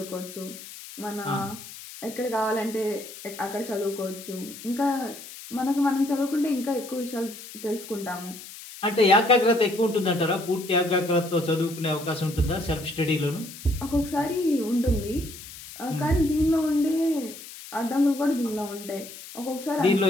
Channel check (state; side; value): noise; left; hiss, 14 dB below the sound